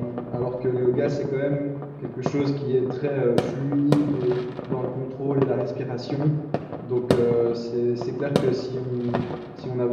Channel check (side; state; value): both; identical; correlation 1.00